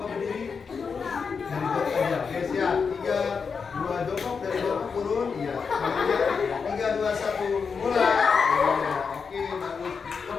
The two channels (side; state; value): right; quieter; 5.6 dB